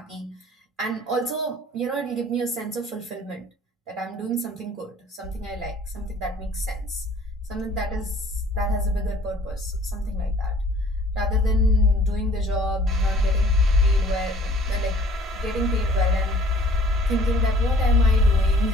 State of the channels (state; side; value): normal; both; correlation 0.53